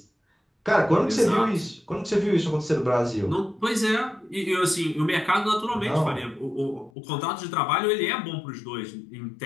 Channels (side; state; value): right; drops out; at 6.9 s